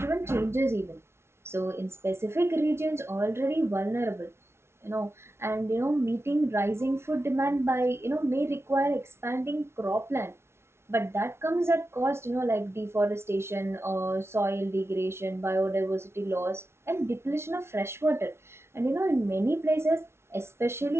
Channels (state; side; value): late; left; 0.12 ms